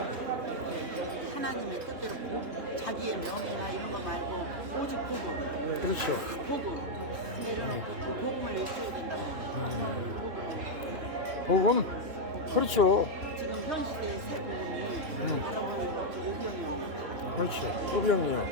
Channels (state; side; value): late; left; 3.4 ms